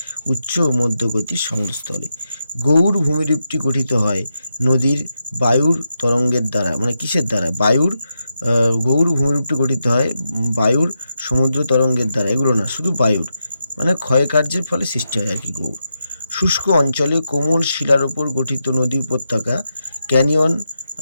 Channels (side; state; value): both; inverted; correlation -0.86